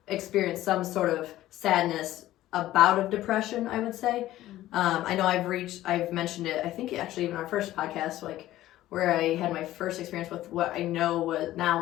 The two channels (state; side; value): quieter; right; 14.7 dB